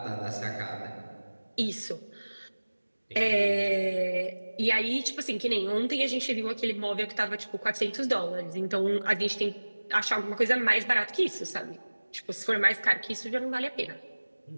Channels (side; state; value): both; inverted; correlation -1.00